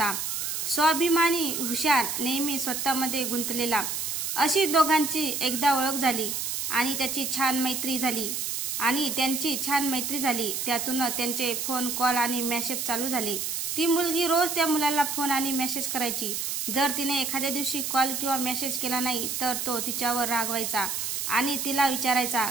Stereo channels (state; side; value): noise; right; hiss, 2 dB below the sound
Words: स्वाभिमानी, हुशार, नेहमी स्वतःमध्ये गुंतलेला. अशी दोघांची एकदा ओळख झाली आणि त्यांची छान मैत्री झाली. त्यातून त्यांचे फोन कॉल आणि मेसेज चालू झाले. ती मुलगी रोज त्या मुलाला फोन आणि मेसेज करायची. जर तिने एखाद्या दिवशी कॉल किंवा मेसेज केला नाही तर तो तिच्यावर रागवायचा आणि तिला विचारायचा,